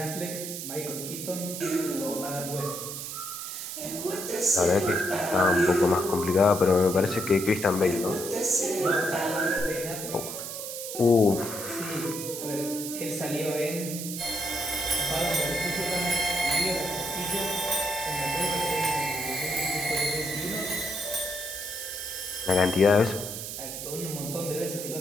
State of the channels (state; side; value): noise; right; hiss, 7 dB below the sound